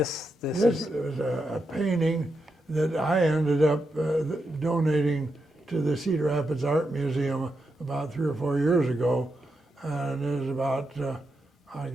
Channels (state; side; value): normal; both; correlation 0.85